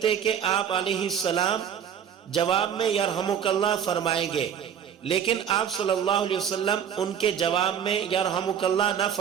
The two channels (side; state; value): left; quieter; 8.7 dB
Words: کہ آپ علیہ السلام جواب میں یرحمک اللہ فرمائیں گے، لیکن آپ صلی اللہ علیہ وسلم ان کے جواب میں یرحمک اللہ نہ